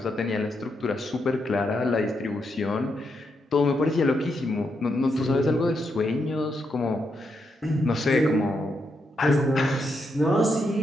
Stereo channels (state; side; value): normal; both; correlation 0.81